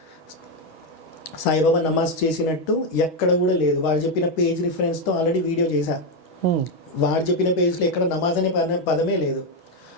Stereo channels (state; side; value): late; right; 6.2 ms